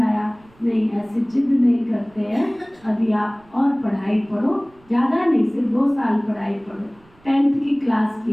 नहीं ऐसे जिद नहीं करते हैं, अभी आप और पढ़ाई पढ़ो, ज़्यादा नहीं, सिर्फ 2 साल पढ़ाई पढ़ो। 10th की क्लास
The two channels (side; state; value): right; noise; rumble, 30 dB below the sound